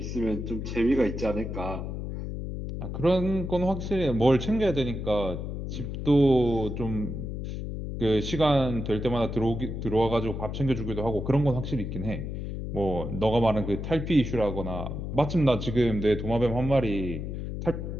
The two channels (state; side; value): noise; left; hum, 5 dB below the sound